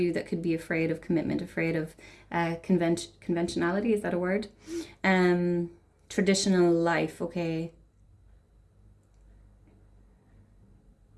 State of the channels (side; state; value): both; identical; correlation 1.00